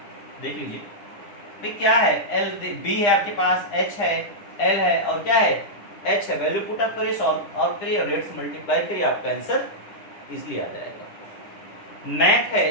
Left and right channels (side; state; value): right; late; 9.9 ms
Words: देख लीजिए भाई क्या है, एल बी है आपके पास, एच है, एल है और क्या है, एच है। वैल्यू पुटअप करिए, सॉल्व आउट करिए और रेट से मल्टीप्लाई करिए, आपका आंसर इजिली आ जाएगा। मैथ है,